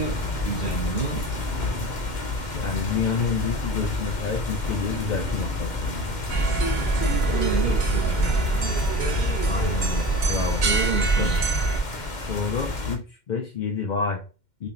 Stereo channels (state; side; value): late; right; 2.1 ms